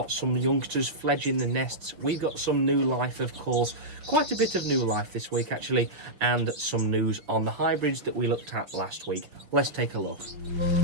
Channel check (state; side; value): late; left; 6.0 ms